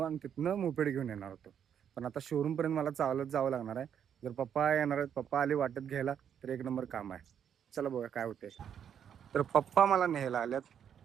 आणि तिथनं मोपेड घेऊन येणार होतो. पण आता शोरूमपर्यंत मला चालत जावं लागणार आहे. जर पप्पा येणार आहेत, पप्पा आले वाटत घ्यायला, तर एक नंबर काम आहे. चला बघा काय होते. तर पप्पा मला न्यायला आल्यात.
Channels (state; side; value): quieter; left; 8.6 dB